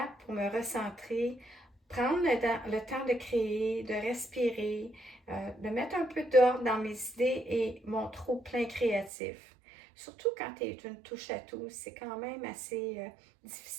pour me recentrer, prendre le temps de créer, de respirer, de mettre un peu d'ordre dans mes idées et mon trop-plein créatif. Surtout quand tu es une touche à tout, c'est quand même assez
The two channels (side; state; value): left; drops out; at 9.1 s